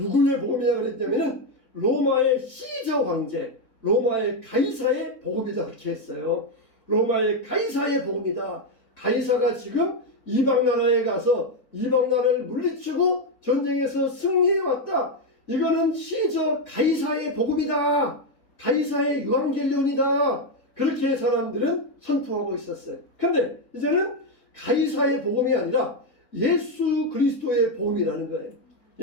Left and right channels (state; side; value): late; right; 4.0 ms